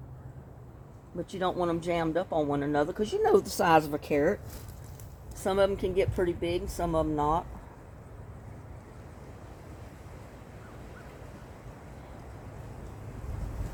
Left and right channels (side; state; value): both; identical; correlation 1.00